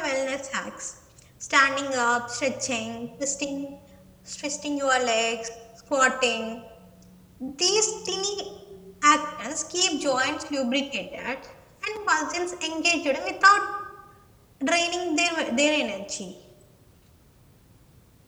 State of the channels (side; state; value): both; identical; correlation 1.00